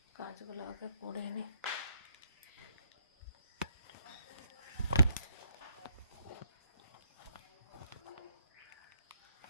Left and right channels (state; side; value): inverted; both; correlation -0.71